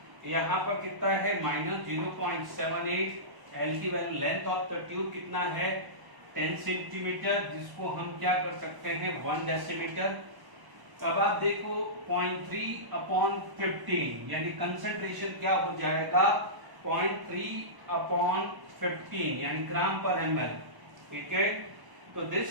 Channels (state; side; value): late; left; 1.0 ms